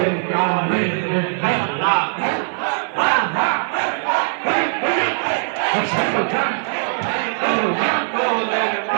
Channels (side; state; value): left; silent; 59 dB below the other